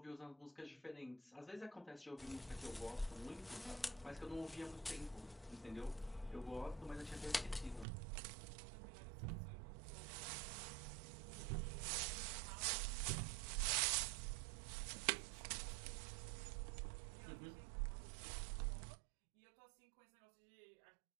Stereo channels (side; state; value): left; drops out; at 7.9 s